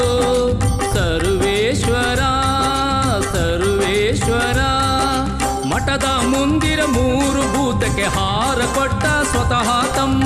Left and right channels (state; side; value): identical; both; correlation 1.00